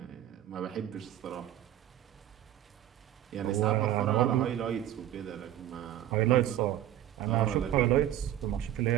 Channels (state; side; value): quieter; left; 12.4 dB